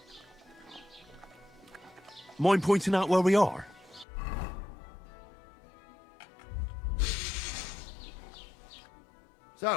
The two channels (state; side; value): drops out; right; at 4.0 s